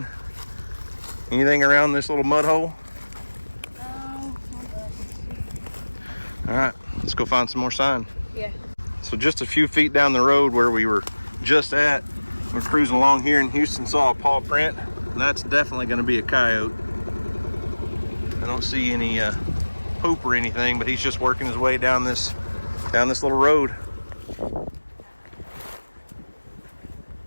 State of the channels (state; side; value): inverted; both; correlation -1.00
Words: Anything around this little mud hole? No. All right, let's go find some more sign. Yeah. So just a few feet down the road where we were just at, we're cruising along here, and Houston saw a paw print, and that's definitely going to be a coyote. I don't see any poop or anything, but he's just working his way down this little road.